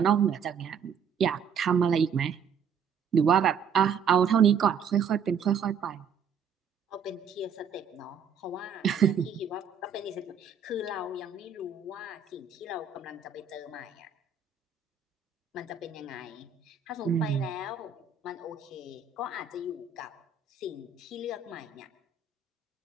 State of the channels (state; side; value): quieter; left; 6.4 dB